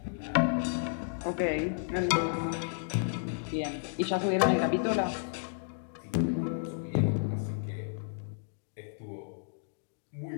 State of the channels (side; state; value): right; silent; digital silence